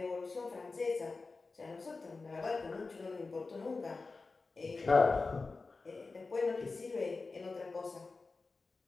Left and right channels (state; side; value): quieter; right; 3.9 dB